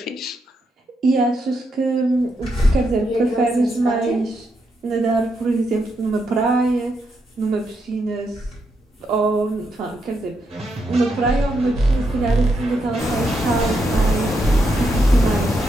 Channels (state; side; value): normal; both; correlation 0.81